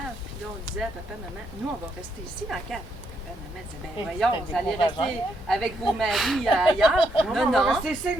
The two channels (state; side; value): normal; both; correlation 0.76